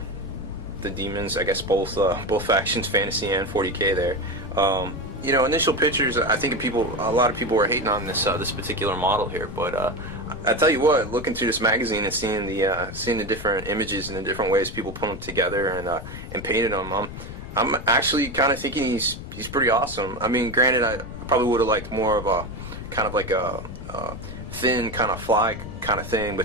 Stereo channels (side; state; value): left; noise; rumble, 10 dB below the sound